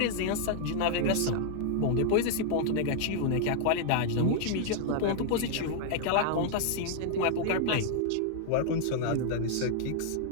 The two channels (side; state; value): both; different; correlation -0.01